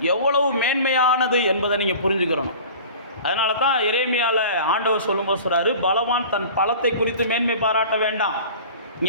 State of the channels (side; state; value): both; inverted; correlation -0.41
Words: எவ்வளவு மேன்மையானது என்பதை நீங்கள் புரிஞ்சுக்கிறணும். அதனால தான் எரேமியாவில் ஆண்டவர் சொல்லும்போது சொல்கிறாரு, பலவான் தன் பலத்தை குறித்து மேன்மை பாராட்ட வேண்டாம்,